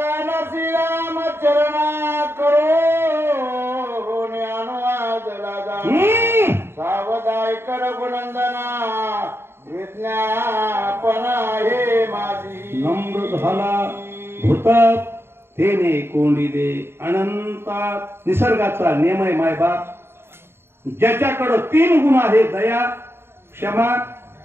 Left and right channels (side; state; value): left; late; 0.11 ms